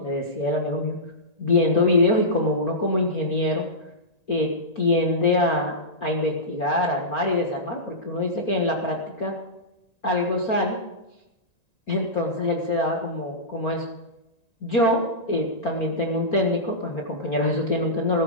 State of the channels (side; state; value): right; late; 1.9 ms